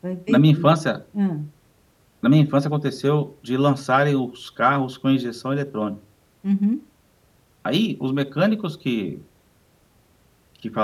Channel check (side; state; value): both; identical; correlation 1.00